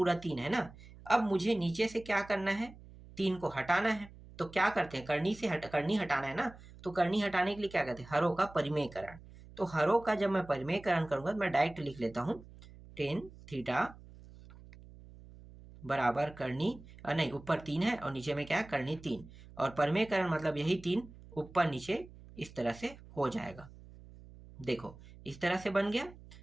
3 है ना। अब मुझे नीचे से क्या करना है, 3 को हटाना है। तो क्या करते हैं, कर्णी से कर्णी हटाना है ना, तो कर्णी हटाने के लिए क्या करते हैं, हरों का परिमेयकरण। तो हरों का जब मैं परिमेयकरण करूंगा तो मैं डायरेक्ट लिख लेता हूँ, टेन थीटा बराबर कर्णी, नहीं ऊपर 3 है और नीचे में क्या है, कर्णी 3, और परिमेयकरण मतलब यही 3 ऊपर नीचे इस तरह से हो जाएगा। देखो इस तरह से बन गया।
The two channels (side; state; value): right; noise; hum, 19 dB below the sound